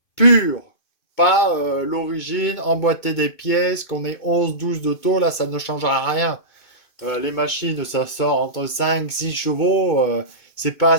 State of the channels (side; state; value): right; late; 2.2 ms